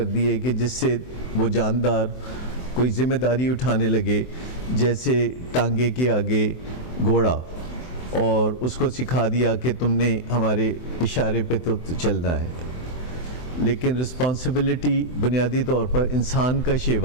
दिए कि जिससे वो जानदार कोई जिम्मेदारी उठाने लगे, जैसे टांगे के आगे घोड़ा, और उसको सिखा दिया कि तुमने हमारे इशारे पे तो चलना है। लेकिन रिस्पॉन्सिबिलिटी बुनियादी तौर पर इंसान का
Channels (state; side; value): late; right; 24 ms